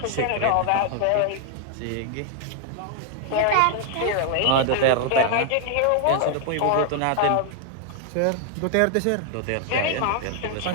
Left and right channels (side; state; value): both; different; correlation 0.00